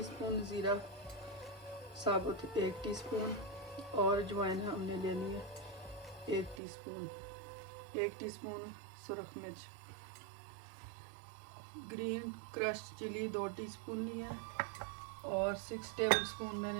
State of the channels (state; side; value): drops out; left; at 6.6 s